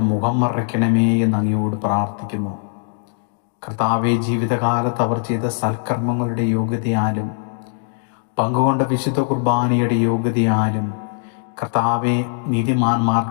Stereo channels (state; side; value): silent; right; digital silence